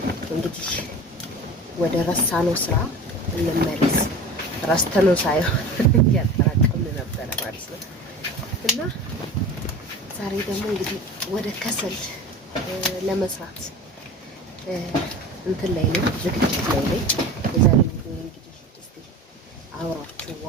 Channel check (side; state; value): both; normal; correlation 0.36